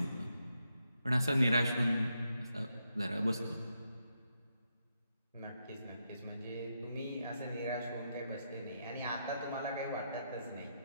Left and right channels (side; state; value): both; inverted; correlation -0.82